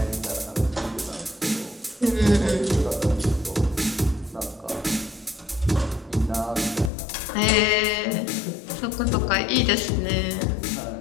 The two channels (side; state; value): right; drops out; at 6.9 s